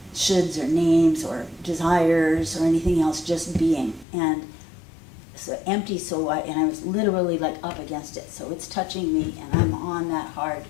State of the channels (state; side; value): drops out; right; at 4.0 s